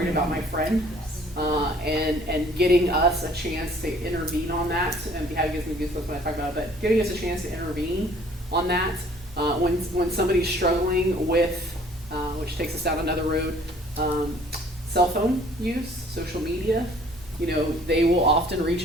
about my friend. And getting us a chance to intervene on that, and having gives me goosebumps when I talk about it, but giving us a chance to intervene on that when somebody's struggling with, which takes us down another road, cell phone use, social media. They will often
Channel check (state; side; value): normal; both; correlation 0.56